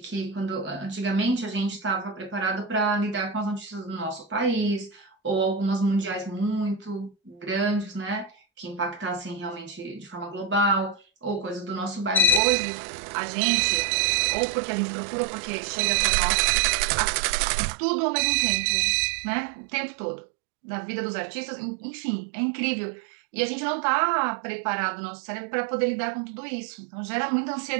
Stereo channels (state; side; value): drops out; left; at 12.4 s